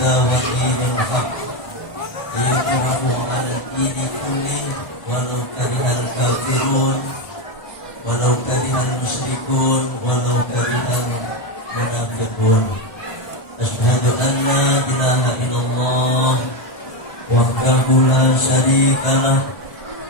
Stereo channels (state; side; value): late; right; 1.3 ms